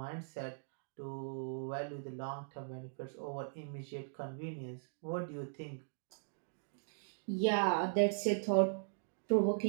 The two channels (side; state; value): left; silent; digital silence